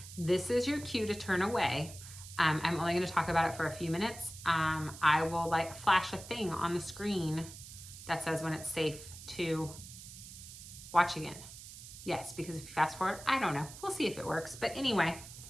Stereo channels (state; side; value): noise; right; hiss, 14 dB below the sound